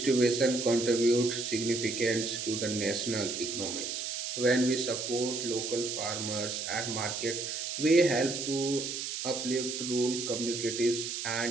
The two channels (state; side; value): noise; right; hiss, 4 dB below the sound